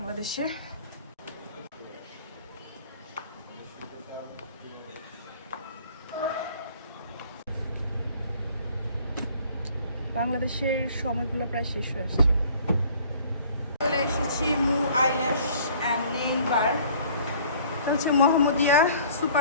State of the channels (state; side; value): inverted; both; correlation -0.53